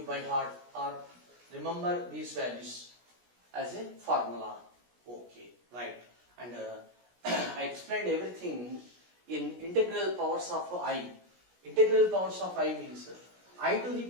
by heart or remember these values as a formula. Okay, right. And I explained everything in integral powers of I. Integral powers of I means I to the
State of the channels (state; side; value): late; left; 17 ms